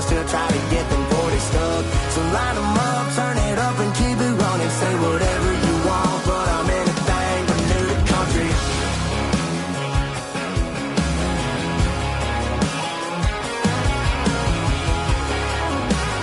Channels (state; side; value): identical; both; correlation 1.00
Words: still try to get them 40 stuck. So line them up, turn it up and keep it running. Say whatever you want, but I'm anything but new to country.